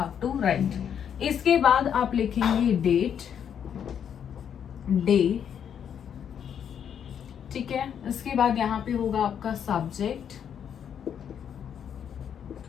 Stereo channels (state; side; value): quieter; right; 8.4 dB